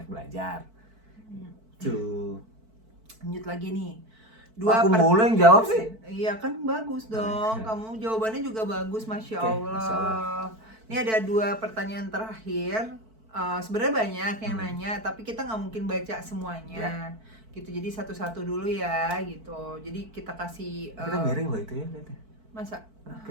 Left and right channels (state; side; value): late; left; 4.5 ms